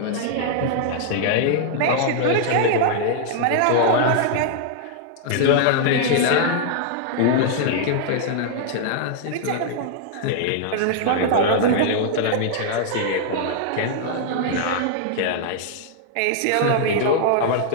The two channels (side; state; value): both; different; correlation -0.01